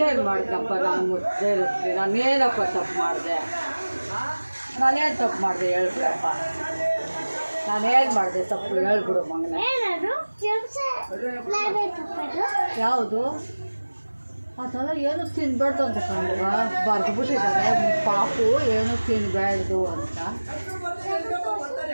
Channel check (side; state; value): both; inverted; correlation -1.00